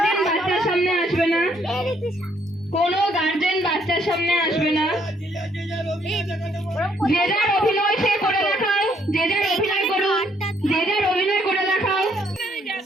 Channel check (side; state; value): both; normal; correlation 0.69